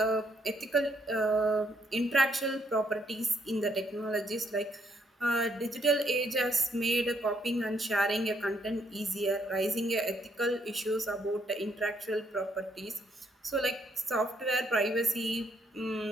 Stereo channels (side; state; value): both; normal; correlation 0.72